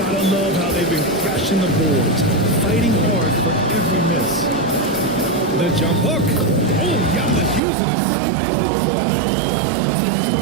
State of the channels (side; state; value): left; drops out; at 7.6 s